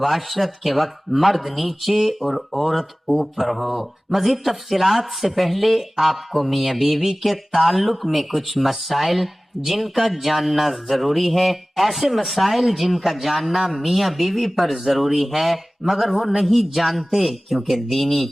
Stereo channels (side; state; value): both; normal; correlation 0.98